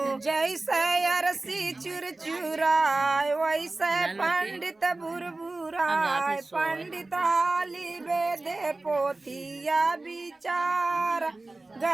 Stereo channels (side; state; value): left; quieter; 3.1 dB